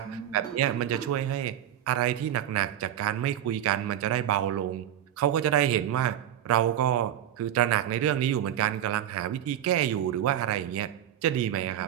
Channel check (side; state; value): left; quieter; 10.9 dB